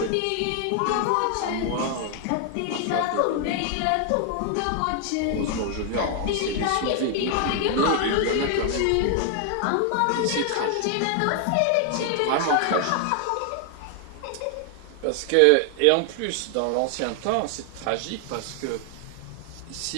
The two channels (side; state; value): both; different; correlation 0.00